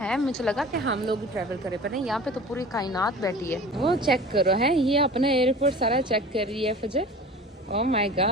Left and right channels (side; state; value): both; normal; correlation 0.39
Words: मुझे लगा कि हम लोग ट्रैवल करें, पर नहीं, यहाँ पे तो पूरी कायनात बैठी है। वो चेक करो है, ये अपना एयरपोर्ट सारा चेक कर रही है फजर। Oh my